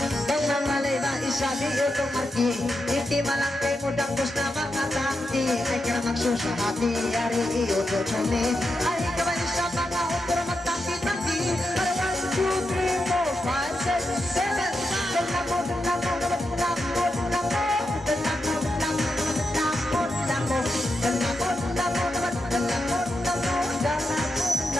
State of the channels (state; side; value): normal; both; correlation 0.86